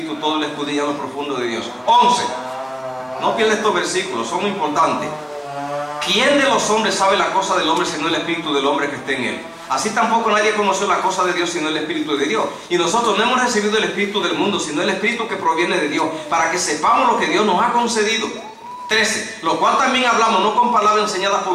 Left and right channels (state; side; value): identical; both; correlation 1.00